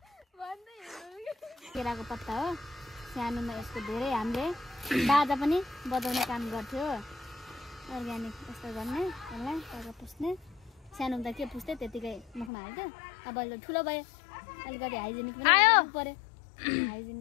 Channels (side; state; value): right; drops out; at 12.5 s